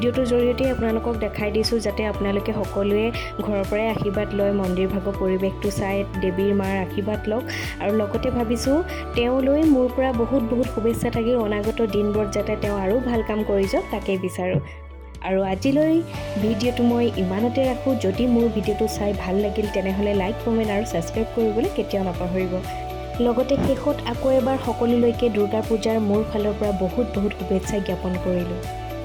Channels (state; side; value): identical; both; correlation 1.00